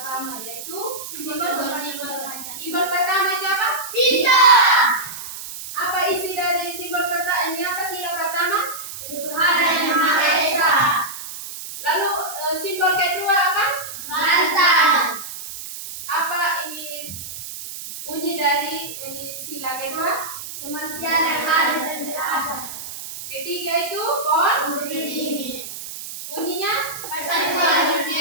yaitu simbol pertama itu apa? Bintang. Apa isi dari simbol pertama? Ini apa sila pertama? Tuhan yang Maha Esa. Lalu simbol kedua apa? Lantang. Apa ini bunyi dari ini sila kedua? Kemanusiaan yang adil dan beradab. Ketiga itu pon. Berdiri. Bunyinya Persatuan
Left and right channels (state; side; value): noise; right; hiss, 10 dB below the sound